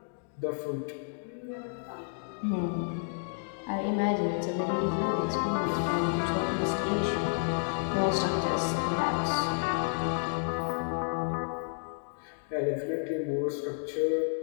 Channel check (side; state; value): right; silent; digital silence